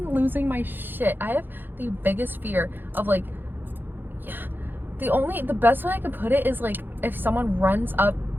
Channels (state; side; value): late; left; 0.096 ms